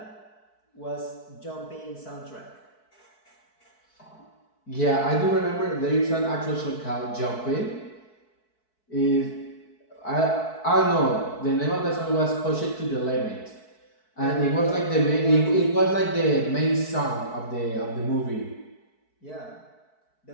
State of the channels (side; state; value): right; late; 4.6 ms